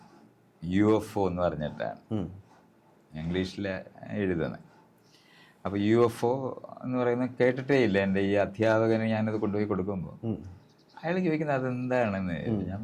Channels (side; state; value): both; identical; correlation 1.00